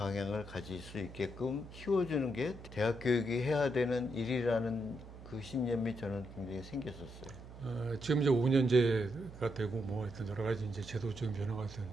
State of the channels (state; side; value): noise; right; hum, 15 dB below the sound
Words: 가질 수 있게끔 키워주는 게 대학 교육이 해야 되는 일이라는 그 신념이 저는 굉장히 생겼었어요. 지금 이제 5년제가 되고 뭐 하여튼 여러 가지 이제 제도적인 변화가